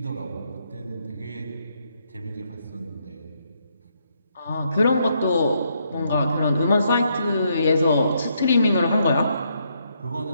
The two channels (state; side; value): inverted; both; correlation -0.75